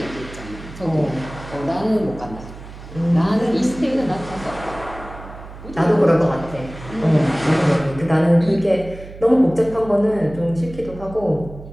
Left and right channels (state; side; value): noise; right; hum, 15 dB below the sound